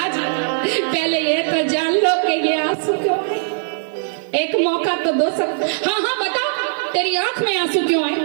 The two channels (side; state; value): left; silent; digital silence